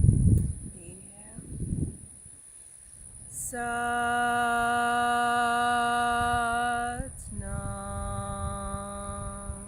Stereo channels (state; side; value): identical; both; correlation 1.00